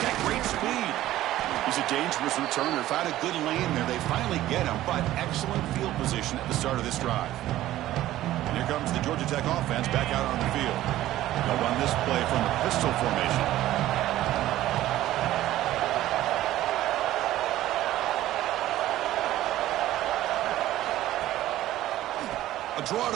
got great speed. He's a dangerous returner. Found a good lane there. They finally get him, but excellent field position at the start of this drive. And here comes the Georgia Tech offense back out on the field. They'll run this play from the pistol formation. A draw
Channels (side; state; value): left; quieter; 14.5 dB